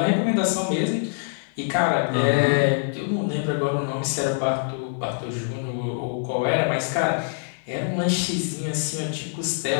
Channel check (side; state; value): right; silent; digital silence